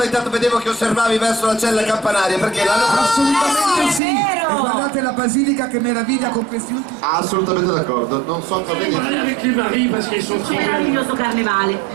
Intanto vedevo che osservavi verso la cella campanaria, perché l'hanno Assolutamente sì! E guardate la basilica che meraviglia con questi ultimi... assolutamente d'accordo, non so cosa dire. Meraviglioso carnevale,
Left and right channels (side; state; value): left; drops out; at 4.0 s